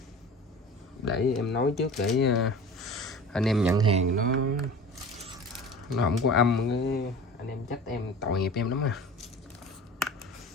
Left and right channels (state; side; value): normal; both; correlation 0.37